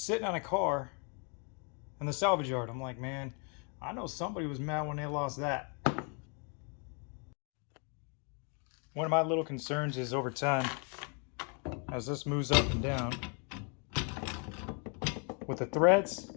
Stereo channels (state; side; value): quieter; right; 38.0 dB